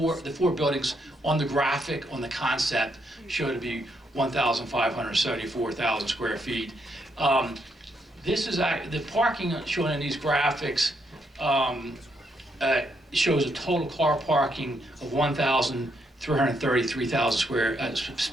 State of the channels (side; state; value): both; normal; correlation 0.76